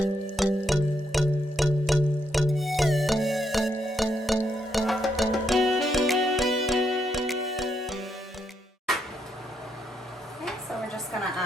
Okay, so we're just gonna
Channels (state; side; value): normal; both; correlation 0.78